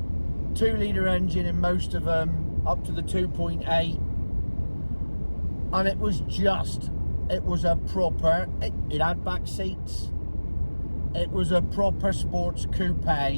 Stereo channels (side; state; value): both; inverted; correlation -1.00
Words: 2-litre engine in most of them, up to the 2.8. And it was a proper, it had back seats. It was a proper sports coupe